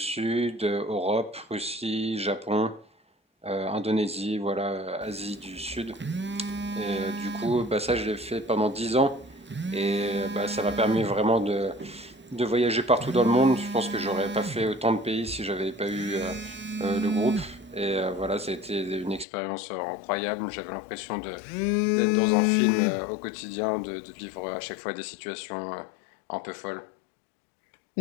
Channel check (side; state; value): right; drops out; at 19.2 s